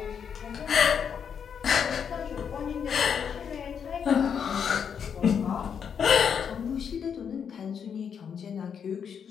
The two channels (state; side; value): quieter; right; 7.3 dB